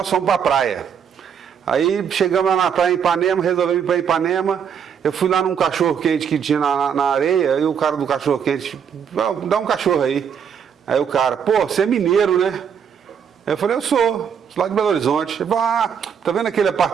fomos para a praia. Aí chegamos lá na praia em Ipanema, resolvemos ir para Ipanema. Eu fui lá num cachorro-quente que tinha na areia, e o cara do cachorro-quente, dá um cachorro aí. Aí o cara, pô, você é mineiro, né? Eu falei, eu sou lá de Belo Horizonte. Ele falou, tá vendo aquele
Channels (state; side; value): quieter; left; 7.6 dB